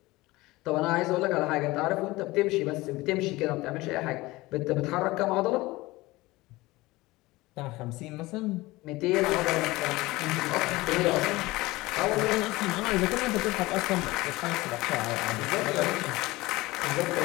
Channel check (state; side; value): quieter; right; 20.2 dB